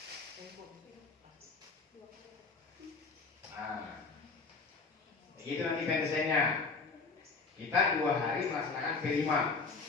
Nah, begitu nanti pendesainnya. Kita 2 hari melaksanakan P5.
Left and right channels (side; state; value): right; quieter; 4.3 dB